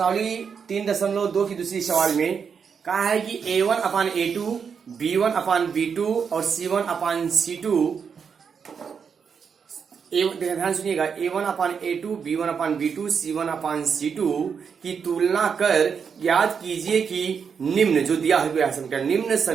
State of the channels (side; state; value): left; quieter; 6.5 dB